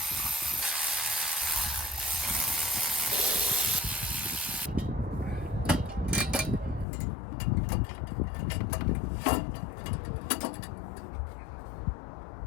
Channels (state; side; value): drops out; right; at 6.9 s